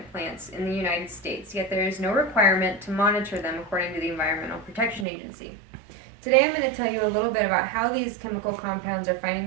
plants in the United States, yet there is no requirement to monitor them according to the Environmental Protection Agency. Today I'm going to tell you a little bit about how these chemical compounds are finding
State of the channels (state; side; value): drops out; left; at 5.1 s